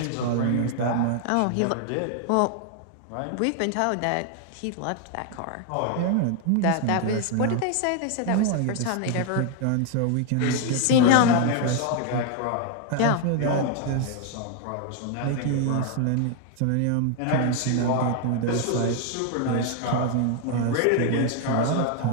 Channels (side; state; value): both; different; correlation 0.00